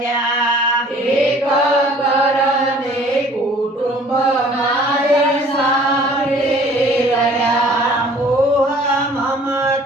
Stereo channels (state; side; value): normal; both; correlation 0.53